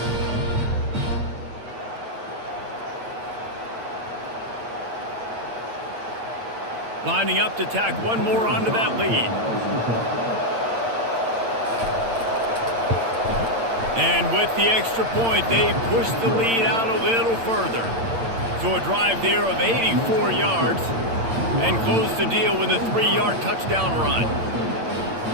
Lining up to tack one more onto that lead. And with the extra point, they push the lead out a little further. So a drive there of 84 yards and close the deal with a 3-yard touchdown run.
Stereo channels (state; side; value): late; left; 8.8 ms